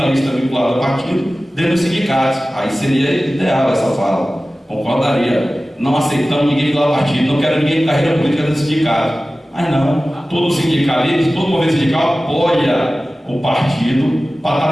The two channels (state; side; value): normal; both; correlation 0.96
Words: vinculados a partido dentro dos sindicatos. Aí seria ideal essa fala. Concordaria. Não aceitamos ninguém vinculado a partido, não quero ninguém de carreira política dentro do sindicato. Mas não, todo sindicalista, todo movimento sindical apoia o partido para estar